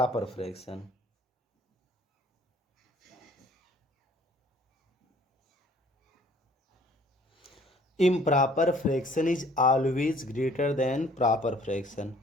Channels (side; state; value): both; normal; correlation 0.56